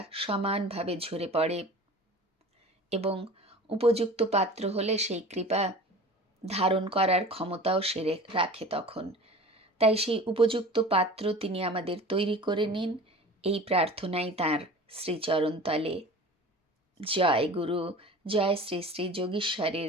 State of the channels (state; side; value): normal; both; correlation 0.39